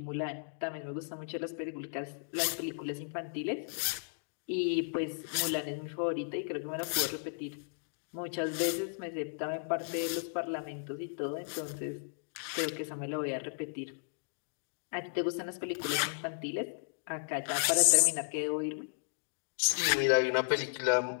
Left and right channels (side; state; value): right; silent; digital silence